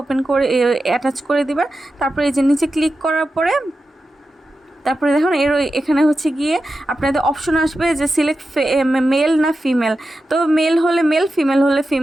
করে অ্যাটাচ করে দিবেন। তারপরে এই যে নিচে ক্লিক করার পরে তারপরে দেখুন এখানে হচ্ছে গিয়ে আপনাদের অপশন আসবে যে সিলেক্ট মেল না ফিমেল, তো মেল হলে মেল, ফিমেল হলে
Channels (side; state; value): both; normal; correlation 0.91